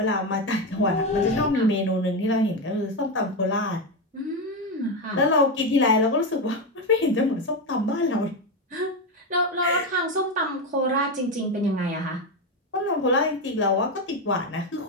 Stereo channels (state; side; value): normal; both; correlation 0.11